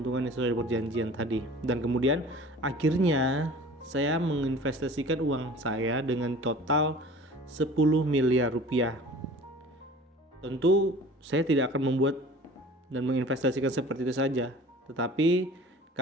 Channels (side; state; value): both; normal; correlation 0.43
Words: yang sesuai perjanjian tadi. Dan kemudian akhirnya saya menginvestasikan uang saya dengan total 10 miliar rupiah. Tentu saya tidak akan membuat dan menginvestasikan seperti itu saja, tetapi